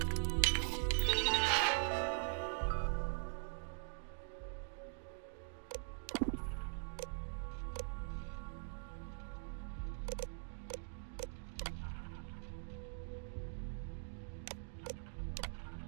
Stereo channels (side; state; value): left; silent; digital silence